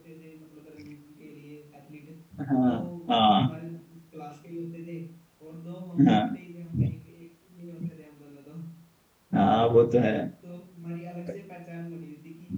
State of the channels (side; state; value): both; identical; correlation 1.00